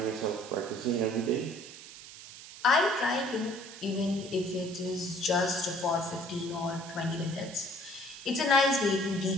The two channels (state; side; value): noise; right; hiss, 15 dB below the sound